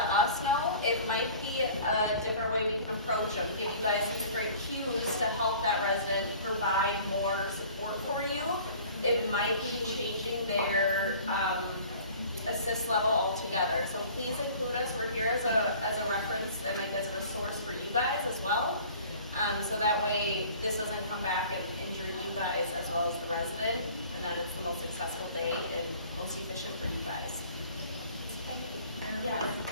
us know. It might be a different way we can approach them, give you guys some different cues to help that resident provide more support for you. It might be changing their assist level altogether. So please include us. We're here as a reference and like as a resource for you guys as well. So that way this doesn't come back and injure you guys as well as the resident, and that it's the most successful day and most efficient for you guys. Yes.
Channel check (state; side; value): inverted; both; correlation -0.47